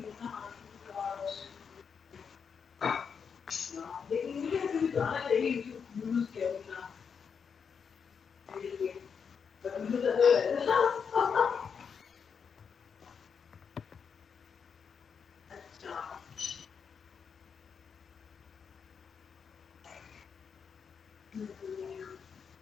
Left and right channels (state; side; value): quieter; right; 6.4 dB